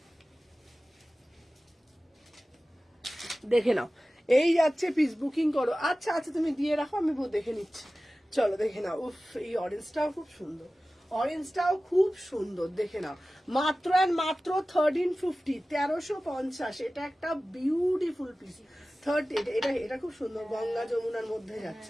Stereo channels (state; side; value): normal; both; correlation 0.96